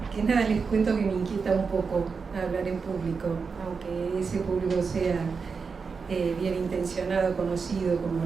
que nada les cuento que me inquieta un poco hablar en público, aunque ese público sea bien intencionado, conocido como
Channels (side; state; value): left; quieter; 5.2 dB